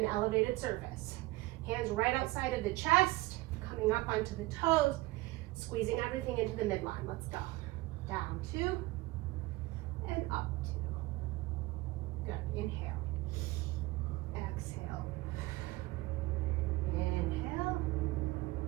elevated surface. Hands right outside of the chest, coming up onto the toes, squeezing everything into the midline. Let's go. Down 2 and up 2. Good. Inhale. Exhale. Inhale.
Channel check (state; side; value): quieter; left; 20.1 dB